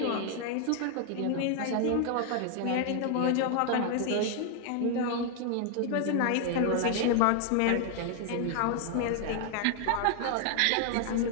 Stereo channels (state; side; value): different; both; correlation 0.00